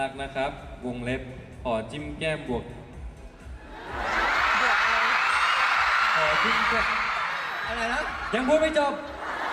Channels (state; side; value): identical; both; correlation 1.00